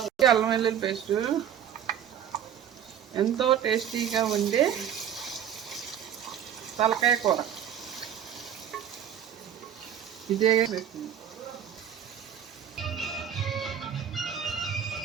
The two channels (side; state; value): left; quieter; 9.3 dB